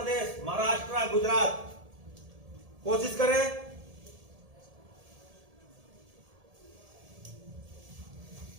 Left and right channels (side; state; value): left; late; 1.7 ms